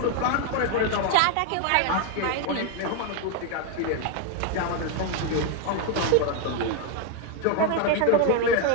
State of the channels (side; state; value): both; different; correlation 0.01